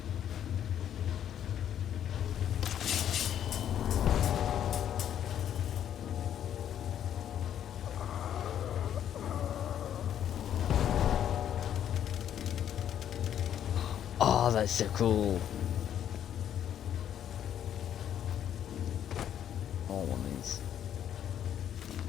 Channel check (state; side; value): quieter; right; 10.0 dB